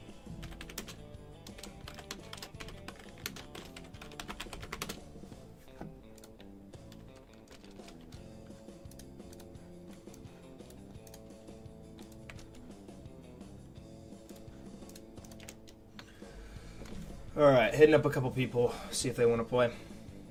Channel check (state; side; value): identical; both; correlation 1.00